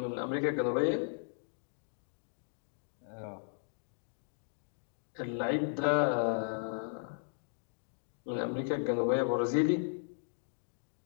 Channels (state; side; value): silent; right; digital silence